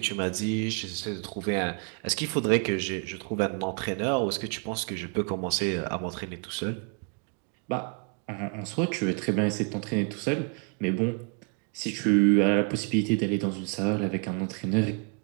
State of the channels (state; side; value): quieter; left; 37.3 dB